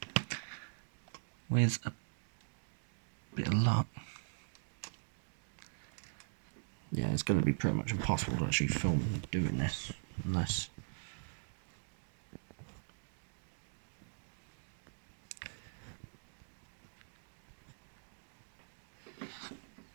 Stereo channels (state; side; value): silent; left; digital silence